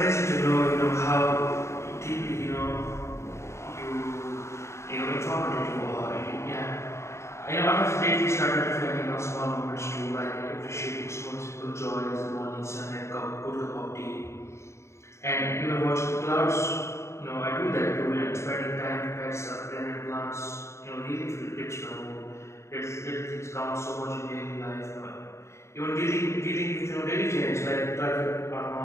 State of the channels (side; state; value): right; late; 0.13 ms